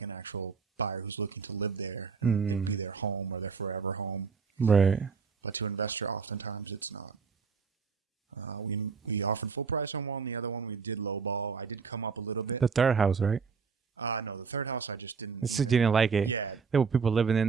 actual buyer who's looking to live there and it'd be their home or their forever home. Right. But to an investor, oftentimes it's not. We offered full price on one. The other one we did lowball. I did come up a little bit. The third house, right? No, the third house I just didn't Just didn't like it. Yeah. There were people living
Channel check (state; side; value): quieter; left; 5.5 dB